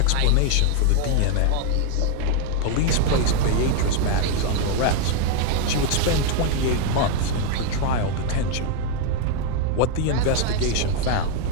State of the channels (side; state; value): both; different; correlation 0.01